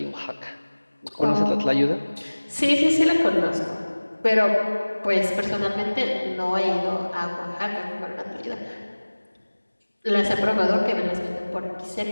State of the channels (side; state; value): both; inverted; correlation -1.00